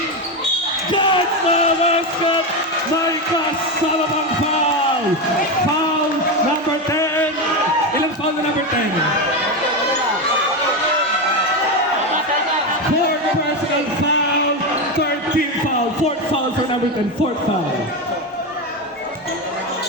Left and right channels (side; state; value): both; normal; correlation 0.13